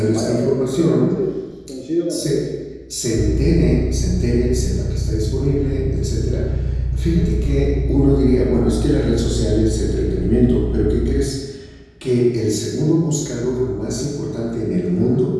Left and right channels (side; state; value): both; identical; correlation 1.00